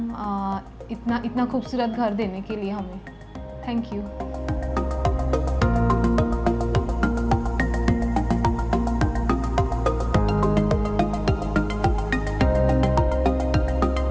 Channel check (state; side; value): identical; both; correlation 1.00